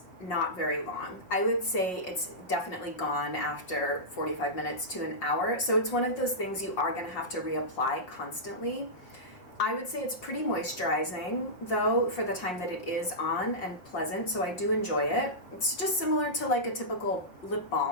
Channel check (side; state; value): right; late; 5.5 ms